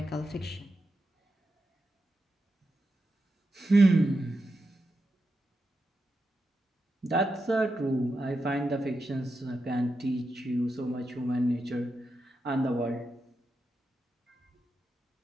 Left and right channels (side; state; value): both; normal; correlation 0.88